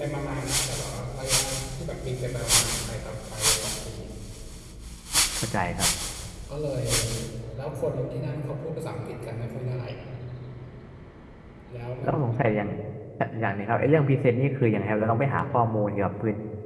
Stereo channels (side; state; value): both; identical; correlation 1.00